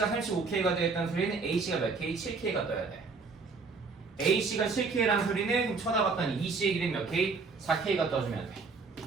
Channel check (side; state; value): left; quieter; 4.5 dB